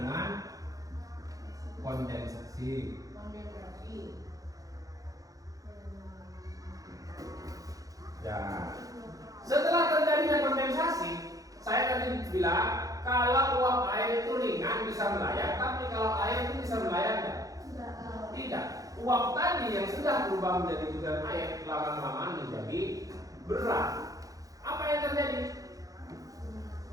kondensasi. Ya, setelah terjadinya kondensasi, saya tadi bilang kalau uap air itu ringan bisa melayang, tapi kalau air itu bisa melayang tidak. Uap tadi yang sudah berubah menjadi butiran air lama-lama menjadi berat. Apa yang terjadi?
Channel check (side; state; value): left; late; 0.17 ms